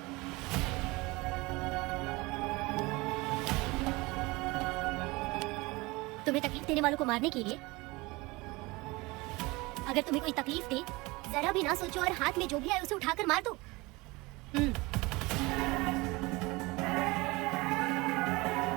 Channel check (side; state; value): left; quieter; 23.2 dB